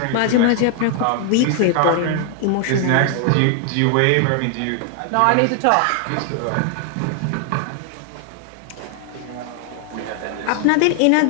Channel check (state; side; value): different; both; correlation 0.00